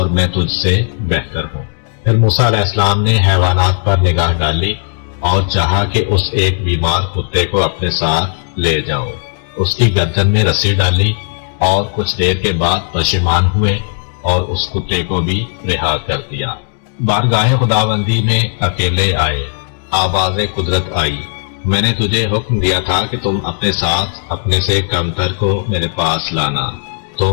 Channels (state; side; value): silent; right; digital silence